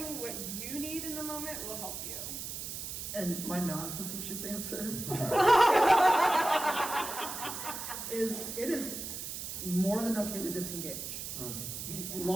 what you need in the moment will help you. And my non-facetious answer is it is more than okay to disengage.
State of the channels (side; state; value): right; noise; hiss, 6 dB below the sound